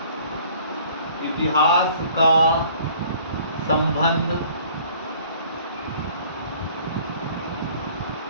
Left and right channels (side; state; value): both; inverted; correlation -0.54